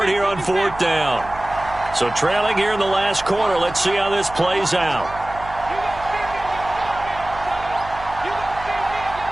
it here on 4th down. So trailing here in the last quarter. Let's see how this plays out.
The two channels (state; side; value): noise; right; hum, 15 dB below the sound